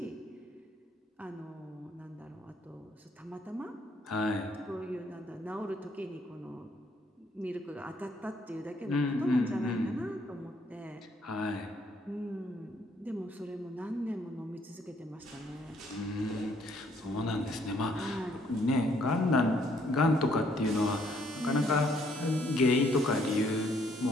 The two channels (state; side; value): normal; both; correlation 0.67